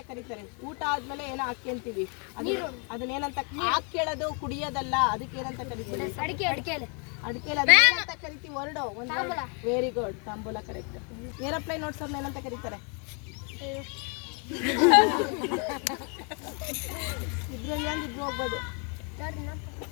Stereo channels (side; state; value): right; quieter; 37.2 dB